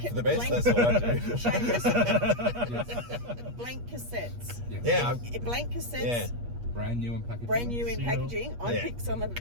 for the best? blank- That's what I do. Seamus, Yes. blank cassettes. Yes. Yeah, Blank cassettes. brand new in packaging. Brand new in Seal. packaging. I Yeah. picked some of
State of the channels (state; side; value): late; left; 8.4 ms